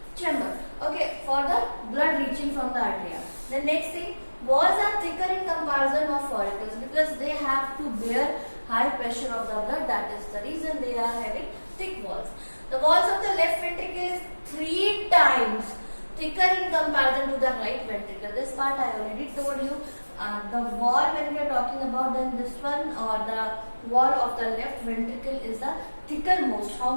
chamber. Okay, for the blood reaching from the arteria. The next thing, walls are thicker in comparison of auricles because they have to bear high pressure of the blood. That is the reason they are having thick walls. The walls of the left ventricle is 3 times thicker in comparison to the right ventricle. This part I already told you. The wall, when we are talking about, then this one, or the wall of the left ventricle is the thicker most.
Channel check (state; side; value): inverted; both; correlation -1.00